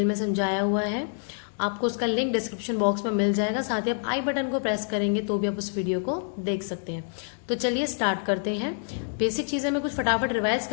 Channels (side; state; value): right; silent; 60 dB below the other